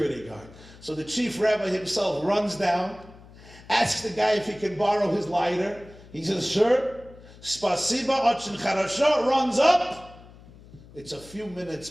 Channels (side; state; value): left; noise; hum, 21 dB below the sound